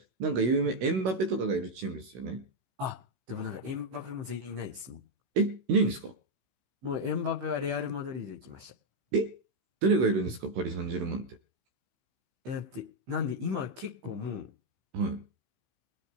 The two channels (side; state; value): left; late; 15 ms